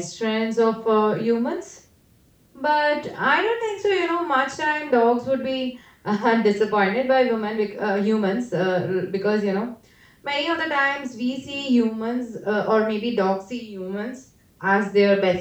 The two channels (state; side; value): identical; both; correlation 1.00